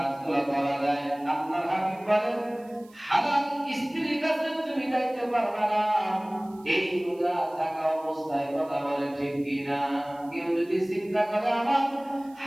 করা যায়, আপনার হাবিব বলেন হালাল স্ত্রীর কাছে তুমি যাইতে পারবে না এই রোজা থাকা অবস্থায়। কথা বলে ঠিক কিনা? কেউ যদি চিন্তা করে আমার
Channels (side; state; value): right; noise; hiss, 29 dB below the sound